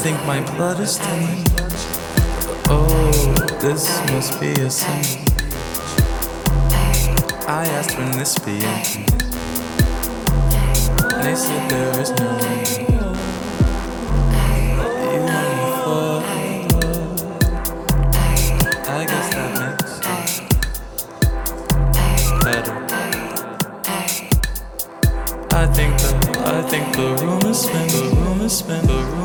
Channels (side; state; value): both; identical; correlation 1.00